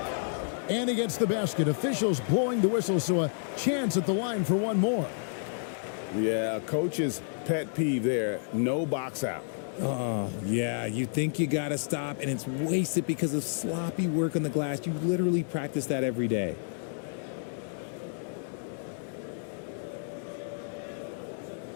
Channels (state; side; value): silent; right; digital silence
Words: And he gets the basket. Officials blowing the whistle, so a chance at the line for one more. Yeah, coach's pet peeve there. No box out. Oh, yeah, you think you got to stop, and it's wasted because of sloppy work on the glass. You literally practice that every day.